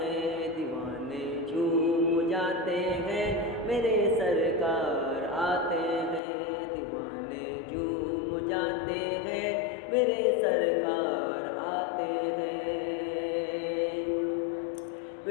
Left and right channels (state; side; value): drops out; right; at 6.2 s